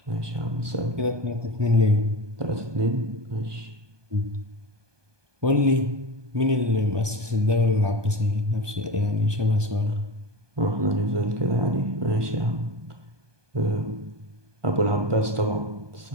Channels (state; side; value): late; left; 1.2 ms